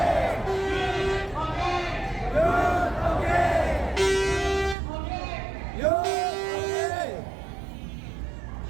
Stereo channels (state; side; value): drops out; left; at 4.8 s